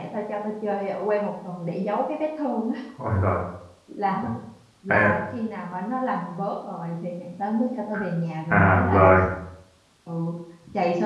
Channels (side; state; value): both; identical; correlation 1.00